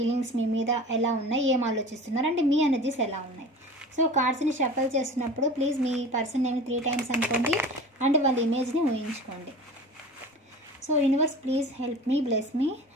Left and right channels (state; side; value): normal; both; correlation 0.38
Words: మీ మీద ఎలా ఉన్నాయి, ఏం ఆలోచిస్తున్నారు అంటే మీ ఎనర్జీస్ ఎలా ఉన్నాయి. సో కార్డ్స్ని షఫల్ చేస్తున్నప్పుడు please me person name 3 times అనుకోండి అండ్ వాళ్ళ ఇమేజ్ని ఊహించుకోండి. So universe please help me, bless me.